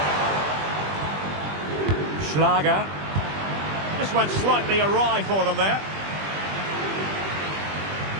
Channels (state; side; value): late; left; 20 ms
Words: Schlager. This went slightly awry for them there.